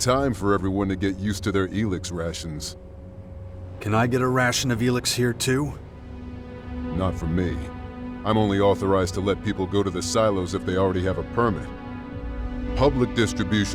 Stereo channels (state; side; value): identical; both; correlation 1.00